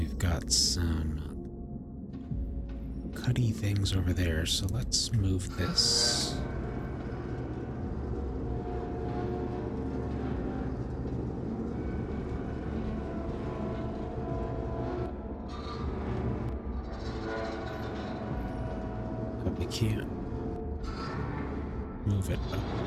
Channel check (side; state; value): both; identical; correlation 1.00